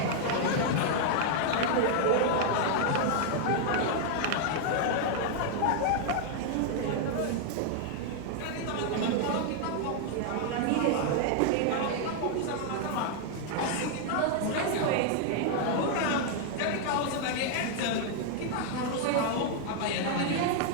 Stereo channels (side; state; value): both; different; correlation 0.00